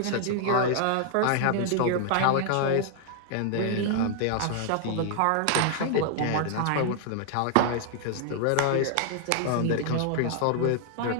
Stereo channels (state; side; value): different; both; correlation 0.00